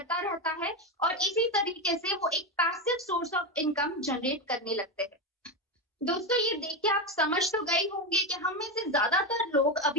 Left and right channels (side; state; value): both; normal; correlation 0.13